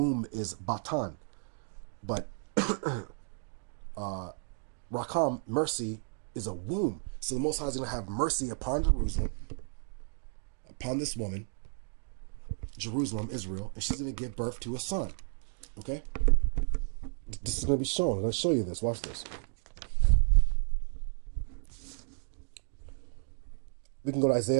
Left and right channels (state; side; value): silent; left; digital silence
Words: is Batan. But Rakam, mercy, is a womb. So the Most High is going to have mercy upon Jerusalem, upon this woman, Jerusalem, Israel, and she's going to give birth to a son. Okay? This is going to be shown. I'm going to show you this. Watch this. We can go to